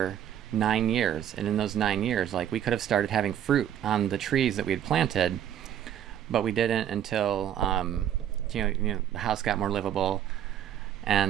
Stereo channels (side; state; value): left; quieter; 10.2 dB